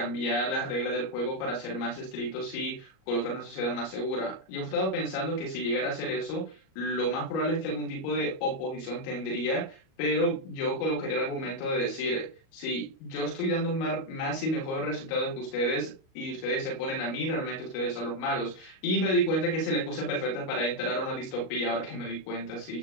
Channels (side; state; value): right; late; 37 ms